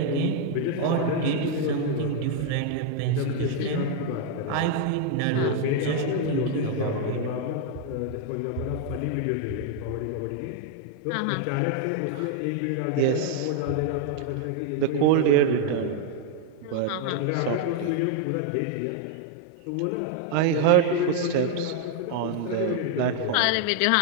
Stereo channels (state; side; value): different; both; correlation 0.00